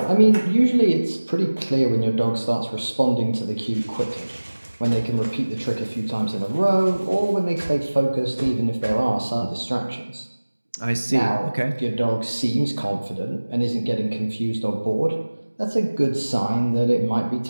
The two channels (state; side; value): inverted; both; correlation -1.00